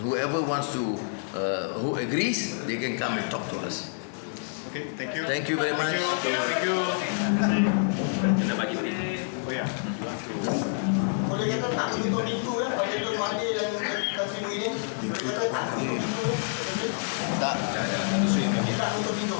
whoever wants to, who agrees, they can come and talk to us. Okay, thank you. Thank you very much. Thank you. Kena bagi Oh ya. Boleh kata tak untuk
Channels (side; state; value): right; silent; 60 dB below the other